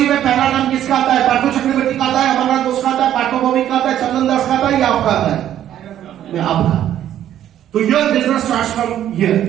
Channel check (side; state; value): left; quieter; 11.3 dB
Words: में पहला नाम किसका आता है? पार्थो चक्रवर्ती का आता है, अमरनाथ घोष का आता है, पार्थो भौमिक का आता है, चंदन दास का आता है, या आपका आता है? आपका। तो your business starts from here.